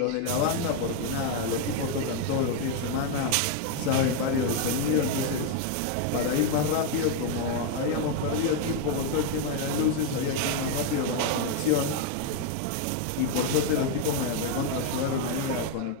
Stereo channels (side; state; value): both; different; correlation 0.01